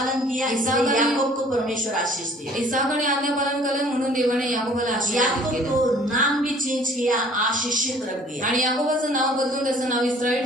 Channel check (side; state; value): both; normal; correlation 0.54